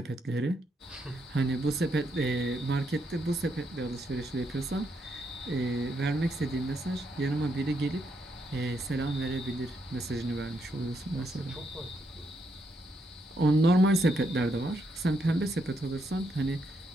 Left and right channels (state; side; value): normal; both; correlation 0.78